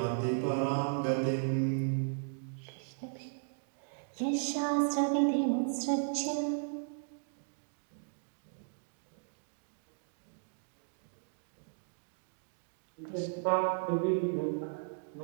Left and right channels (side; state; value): left; silent; digital silence